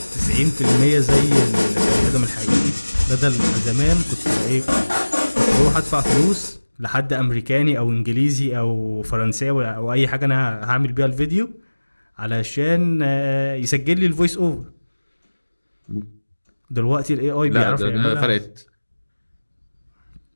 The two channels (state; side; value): inverted; both; correlation -1.00